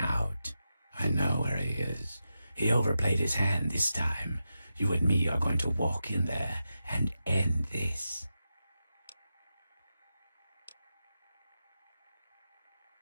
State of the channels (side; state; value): both; inverted; correlation -0.90